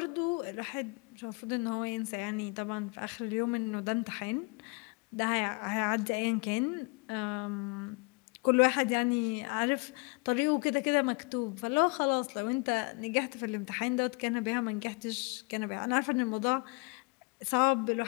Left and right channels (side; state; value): right; quieter; 30.1 dB